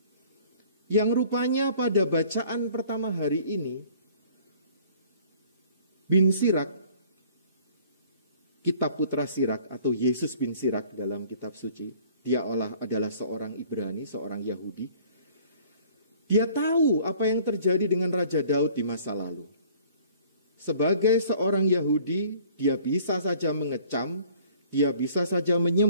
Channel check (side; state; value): both; inverted; correlation -0.53